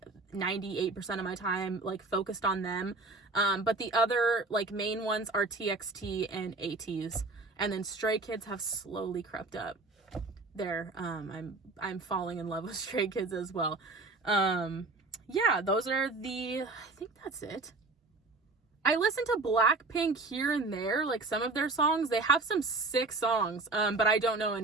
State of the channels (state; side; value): quieter; left; 3.4 dB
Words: 98% of my time like focused on them. But the other like main ones are TXT and ATEEZ. And then Stray Kids have slowly crept up there. I'm falling in love with Stray Kids as well. Yeah, those are I think that's it. I listen to Blackpink here and there, like some of their songs. They have some sick songs, but I don't know